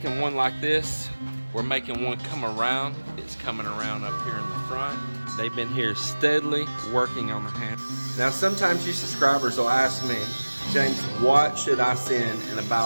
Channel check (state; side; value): inverted; both; correlation -1.00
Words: one like this. We're making one come around. It's coming around up here in the front. They've been here steadily working on the hand. Now sometimes you subscribers will ask me, James, what should I send in a